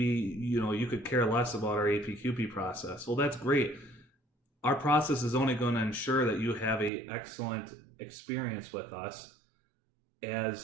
you could care less about our APQP process. Well, that's great. Our process is only going to ensure that you have an excellent experience with us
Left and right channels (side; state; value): left; drops out; at 6.9 s